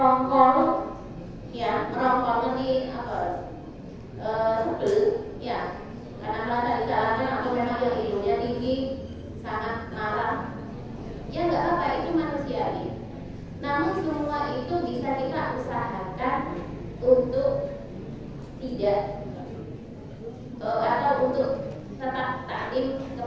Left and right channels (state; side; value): identical; both; correlation 1.00